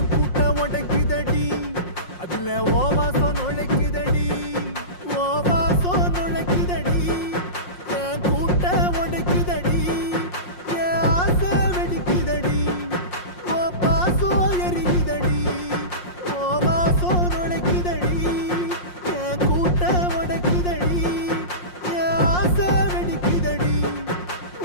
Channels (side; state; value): right; late; 5.6 ms